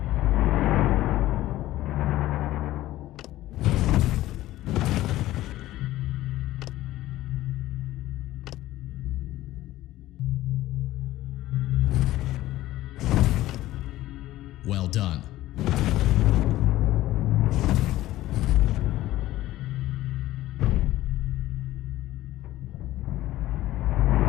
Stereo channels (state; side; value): quieter; right; 15.5 dB